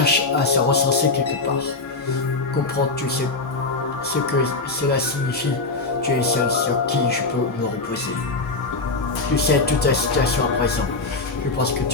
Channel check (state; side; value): quieter; right; 3.6 dB